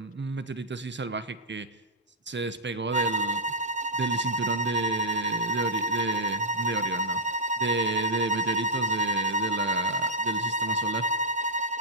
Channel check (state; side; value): normal; both; correlation -0.09